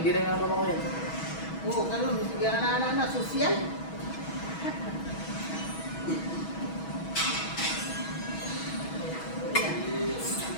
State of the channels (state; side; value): late; right; 6.2 ms